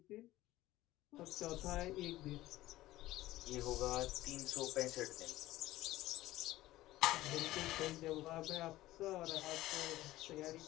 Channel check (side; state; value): right; quieter; 16.4 dB